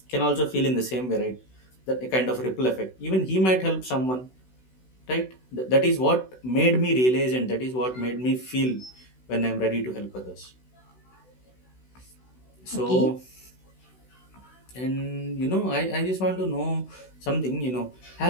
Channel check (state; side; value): late; right; 16 ms